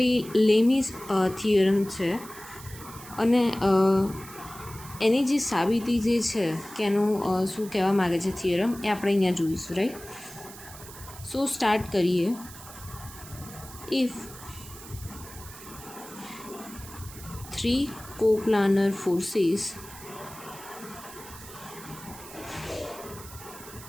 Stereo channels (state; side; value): noise; right; hiss, 16 dB below the sound